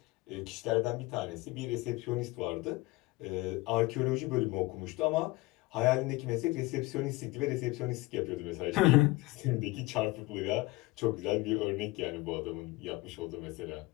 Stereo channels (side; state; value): right; quieter; 21.6 dB